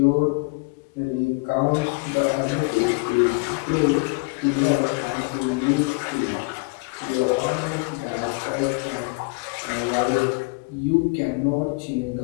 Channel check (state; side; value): quieter; right; 30.2 dB